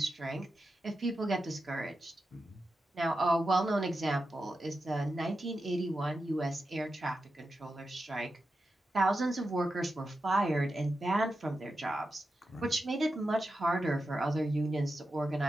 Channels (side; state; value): both; normal; correlation 0.90